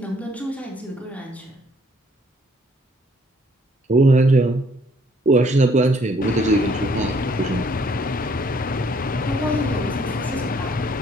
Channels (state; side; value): normal; both; correlation 0.64